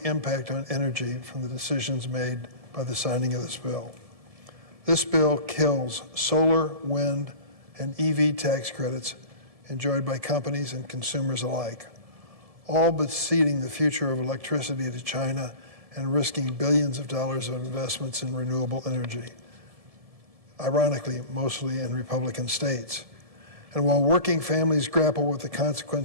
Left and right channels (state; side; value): late; left; 1.7 ms